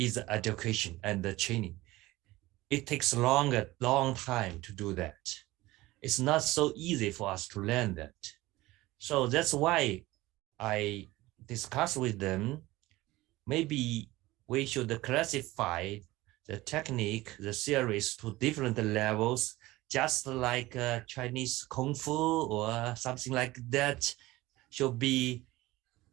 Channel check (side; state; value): left; quieter; 18.8 dB